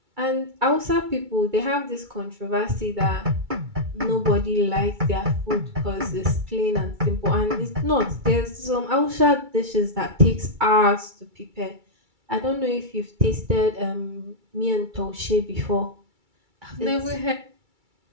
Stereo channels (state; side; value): late; left; 2.3 ms